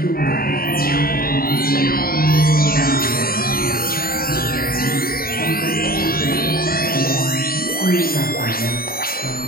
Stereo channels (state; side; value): late; right; 0.43 ms